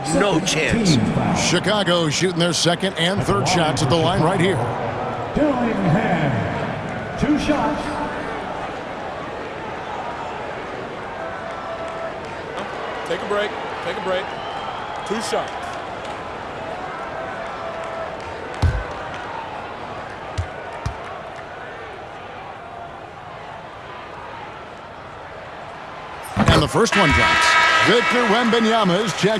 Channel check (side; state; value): both; identical; correlation 1.00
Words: no chance. Chicago shooting their second and third shots at the line right here. Dillingham, 2 shots. Take a break. Take a break. 2 shots. And the first one drops. Victor Wembanyama is